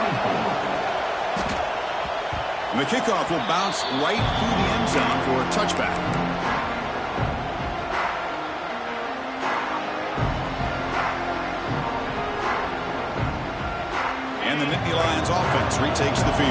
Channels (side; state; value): both; identical; correlation 1.00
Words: And the kickoff will bounce right through the end zone for a touchback. And the Nittany Lions offense retakes the